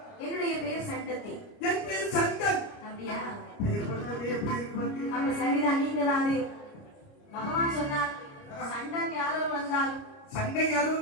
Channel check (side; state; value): right; late; 29 ms